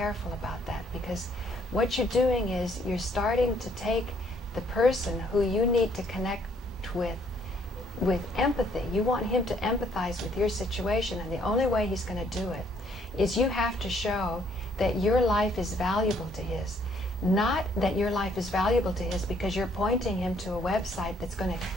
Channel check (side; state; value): both; normal; correlation 0.66